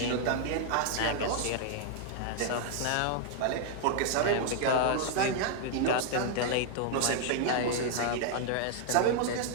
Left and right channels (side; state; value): both; different; correlation 0.00